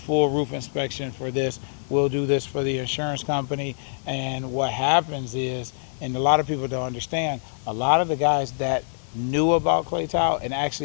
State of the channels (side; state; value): right; silent; digital silence